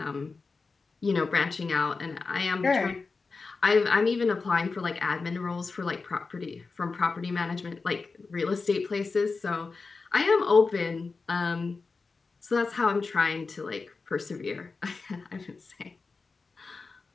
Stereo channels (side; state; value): right; quieter; 4.3 dB